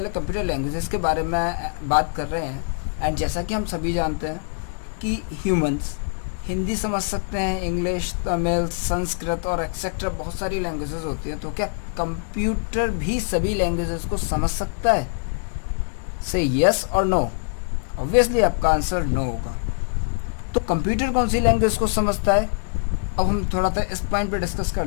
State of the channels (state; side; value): silent; right; 63 dB below the other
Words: computer languages के बारे में बात कर रहे हैं। एंड जैसा कि हम सभी जानते हैं कि ह्यूमंस हिंदी समझ सकते हैं, इंग्लिश, तमिल, संस्कृत और एक्सेट्रा बहुत सारी लैंग्वेजेस होती हैं। तो क्या कंप्यूटर भी सभी लैंग्वेजेस को समझ सकता है? से यस और नो। ऑब्वियसली आपका आंसर नो होगा। तो कंप्यूटर कौन सी लैंग्वेज को समझता है? अब हम थोड़ा सा इस पॉइंट पे डिस्कस कर